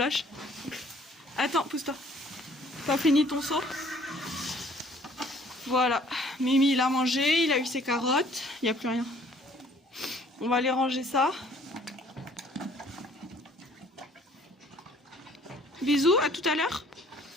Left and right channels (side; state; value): both; normal; correlation 0.58